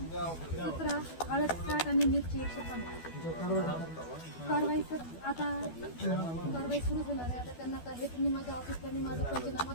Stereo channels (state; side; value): late; right; 12 ms